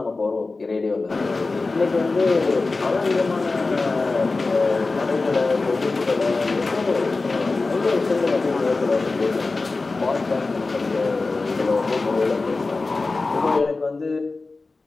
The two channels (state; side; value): quieter; right; 3.7 dB